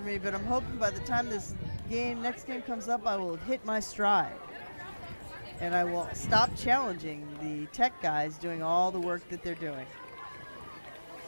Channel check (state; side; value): inverted; both; correlation -1.00